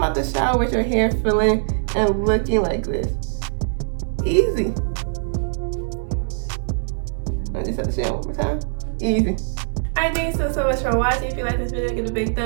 out the shower with your hair feeling and looking like this. Easy. I just have to say it one more time. Easy. Alright, thanks so much for watching. If you like this video, give it a big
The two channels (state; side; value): silent; left; 64 dB below the other